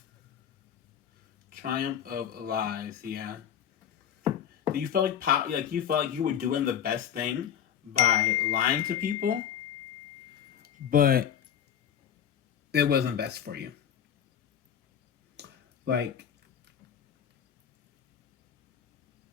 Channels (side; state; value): right; quieter; 9.0 dB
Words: Triumph of lies, yeah. You felt like you felt like you were doing the best thing by lying to people, but it wasn't best for you. Like,